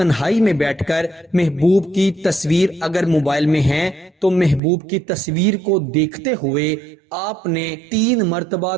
میں بیٹھ کر محبوب کی تصویر اگر موبائل میں ہے تو محبوب کی تصویر کو دیکھتے ہوئے آپ نے 3 مرتبہ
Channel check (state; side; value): drops out; left; at 4.6 s